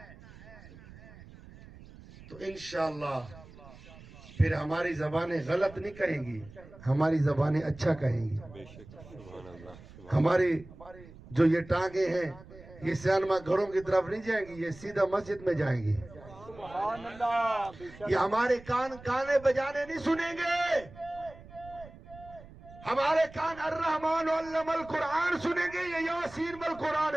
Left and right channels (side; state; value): right; noise; rumble, 19 dB below the sound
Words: تو انشاءاللہ پھر ہماری زبانیں غلط نہیں کہیں گی، ہماری زبانیں اچھا کہیں گی۔ ہماری جو یہ ٹانگیں ہیں، یہ سیانما گھروں کی طرف نہیں جائیں گی، یہ سیدھا مسجد میں جائیں گی۔ سبحان اللہ بے شک یہ ہمارے کان گانے بجانے نہیں سنیں گے، ہمارے کان الرحمن علم القرآن سنیں گے، یا یاسین والقرآن